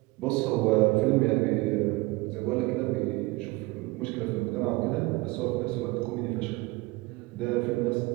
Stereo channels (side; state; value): left; quieter; 22.7 dB